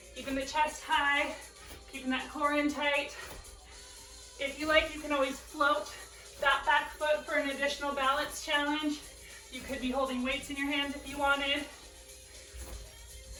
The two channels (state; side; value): identical; both; correlation 1.00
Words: keeping the chest high, keeping that core in tight. If you like, you can always float that back foot for an additional balance challenge. You could be holding weights in your hands if you wanted.